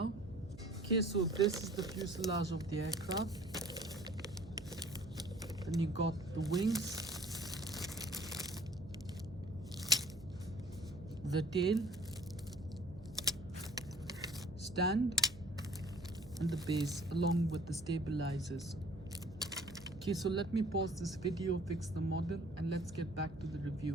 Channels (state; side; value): noise; right; hum, 17 dB below the sound